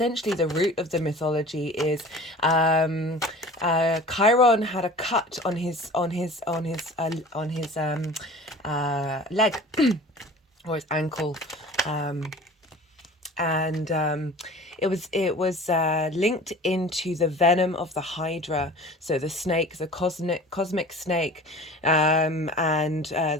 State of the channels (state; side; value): normal; both; correlation 0.41